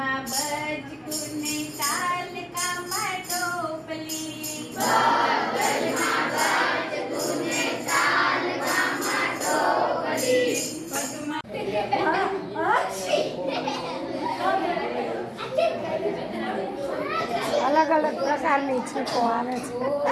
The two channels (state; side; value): identical; both; correlation 1.00